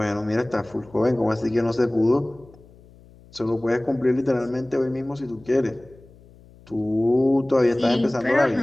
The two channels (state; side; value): noise; left; hum, 25 dB below the sound